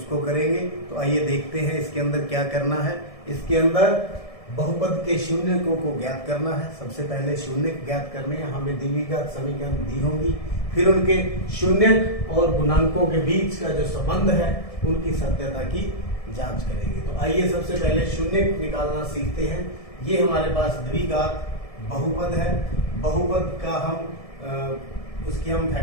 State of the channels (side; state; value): right; late; 1.7 ms